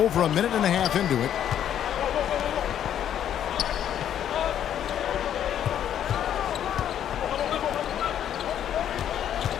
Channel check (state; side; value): quieter; right; 10.1 dB